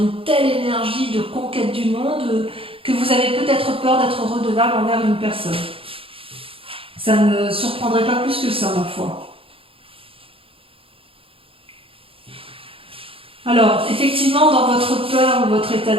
telle énergie de conquête du monde que vous avez peut-être peur d'être redevable envers une personne. Ça ne me surprendrait pas plus que ça, ma foi. Alors, effectivement, dans votre peur ou votre état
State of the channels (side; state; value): left; late; 0.27 ms